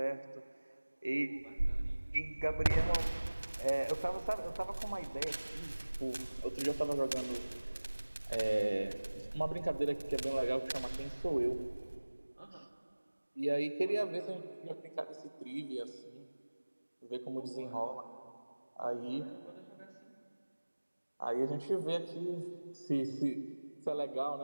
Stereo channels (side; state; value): both; inverted; correlation -1.00